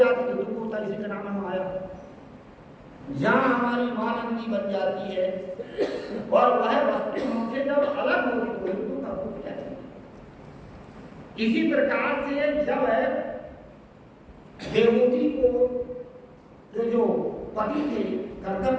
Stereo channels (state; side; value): identical; both; correlation 1.00